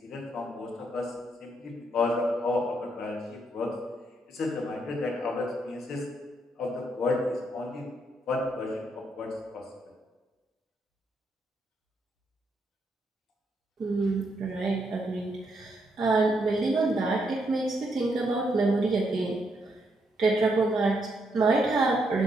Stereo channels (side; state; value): both; normal; correlation 0.77